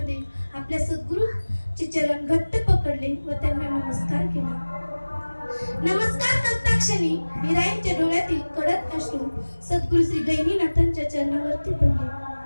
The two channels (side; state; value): both; inverted; correlation -1.00